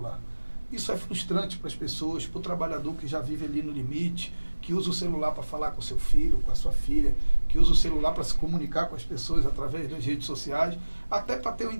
Isso é frustrante para as pessoas, para o trabalhador que já vive ali no limite, que usa o celular para falar com o seu filho, com a sua filha, que usa o celular para se comunicar com as pessoas através das redes sociais, até para ter um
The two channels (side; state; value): both; inverted; correlation -1.00